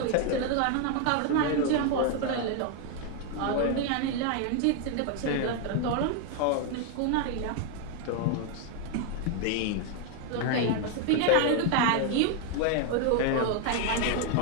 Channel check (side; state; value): both; different; correlation 0.01